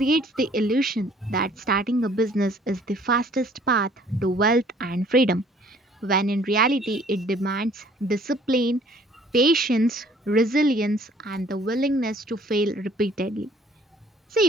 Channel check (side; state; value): both; normal; correlation 0.57